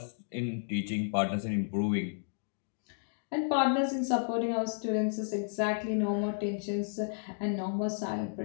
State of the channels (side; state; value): right; silent; digital silence